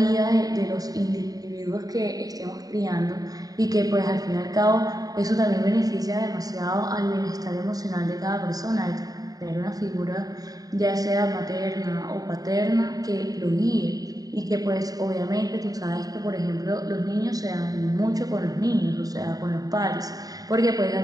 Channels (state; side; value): late; left; 0.18 ms